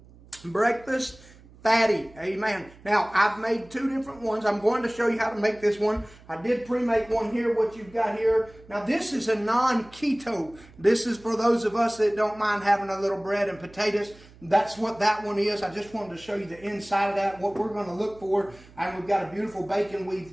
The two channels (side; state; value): right; noise; hum, 23 dB below the sound